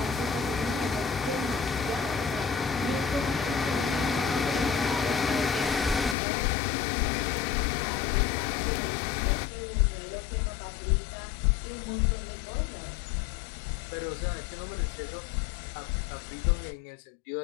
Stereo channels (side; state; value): right; drops out; at 6.2 s